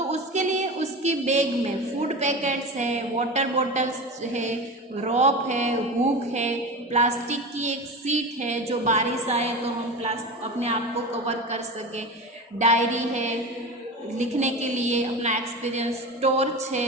उसके लिए उसकी बैग में फूड पैकेट्स है, वाटर बॉटल्स है, रॉप है, हुक है, प्लास्टिक की एक सीट है जो बारिश आए तो हम अपने आप को कवर कर सके, डायरी है लिखने के लिए अपना एक्सपीरियंस, टॉर्च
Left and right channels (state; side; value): normal; both; correlation 0.27